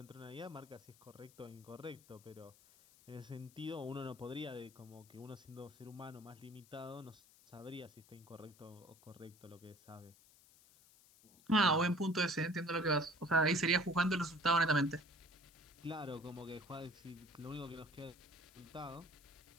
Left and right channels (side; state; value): left; noise; hiss, 25 dB below the sound